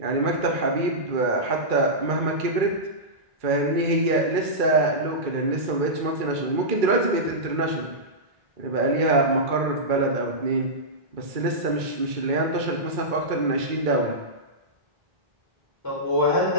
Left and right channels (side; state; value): left; late; 2.3 ms